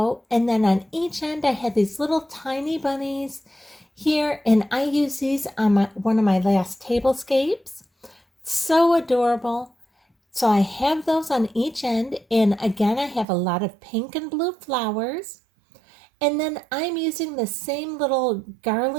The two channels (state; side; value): drops out; left; at 13.2 s